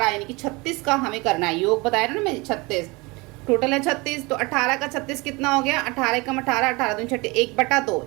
यानी कि 36 का हमें करना है योग, बताया ना मैं 36 टोटल है 36। तो 18 का 36 कितना हो गया 18 कम 18 18 दूनी 6 1/2।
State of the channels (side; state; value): left; quieter; 25.1 dB